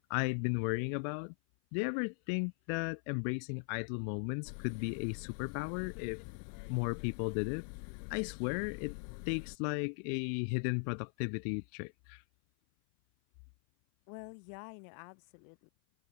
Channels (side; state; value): right; silent; 52 dB below the other